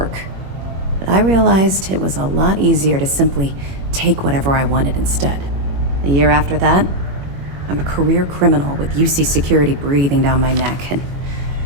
But I realized it was a lot easier to simply take whatever I wanted instead. A year after that, I'm a career criminal with UC security breathing down my neck, and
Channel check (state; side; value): late; left; 21 ms